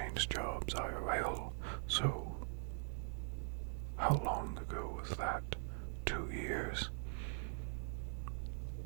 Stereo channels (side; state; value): left; silent; digital silence